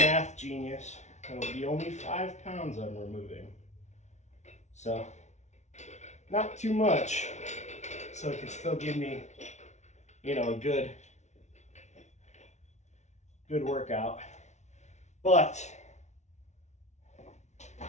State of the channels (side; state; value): right; late; 0.33 ms